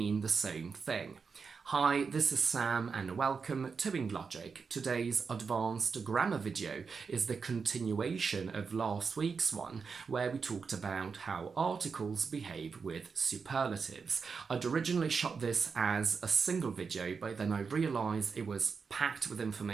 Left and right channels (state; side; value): quieter; left; 5.4 dB